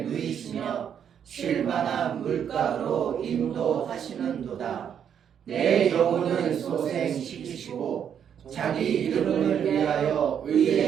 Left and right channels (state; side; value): quieter; left; 8.5 dB